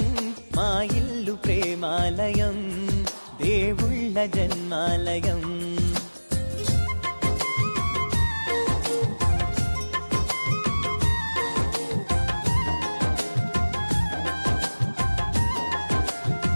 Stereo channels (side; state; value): both; inverted; correlation -1.00